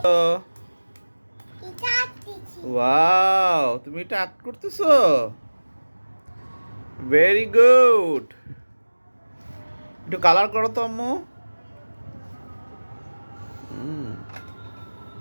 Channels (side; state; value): both; inverted; correlation -1.00